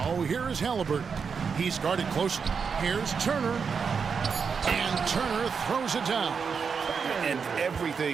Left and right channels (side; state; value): left; quieter; 5.9 dB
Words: here is Halliburton. He's guarded closely. Here's Turner. And Turner throws it down. And